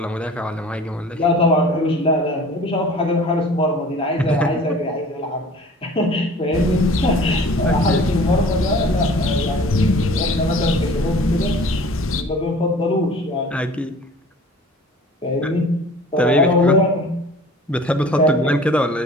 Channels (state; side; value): normal; both; correlation 0.45